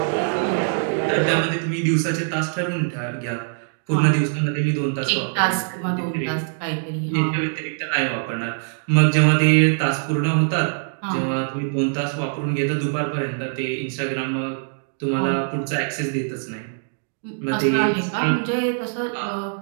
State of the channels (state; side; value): silent; left; digital silence